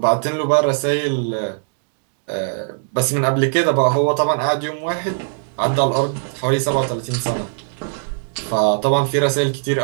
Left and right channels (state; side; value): silent; left; 66 dB below the other